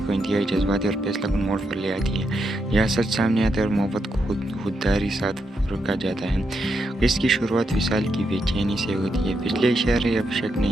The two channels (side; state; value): both; normal; correlation 0.82